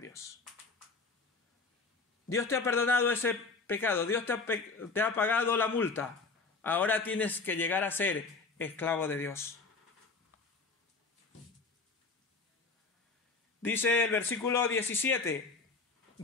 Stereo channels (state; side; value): quieter; right; 4.1 dB